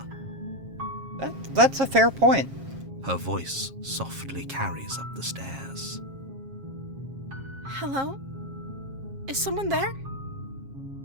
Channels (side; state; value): left; late; 7.4 ms